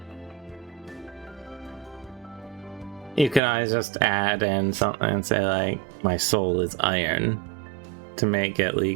You can always just add in something and say like, my soul is iron, to make it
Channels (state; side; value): drops out; left; at 3.4 s